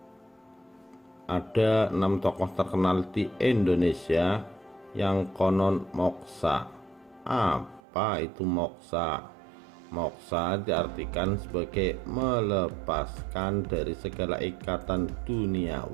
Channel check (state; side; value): drops out; left; at 7.8 s